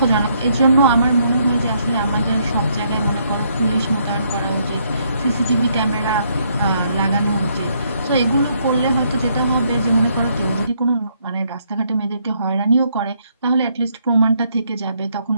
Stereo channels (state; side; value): inverted; both; correlation -0.72